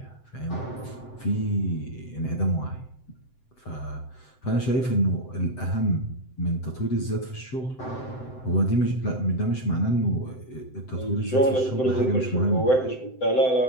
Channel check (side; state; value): right; late; 7.8 ms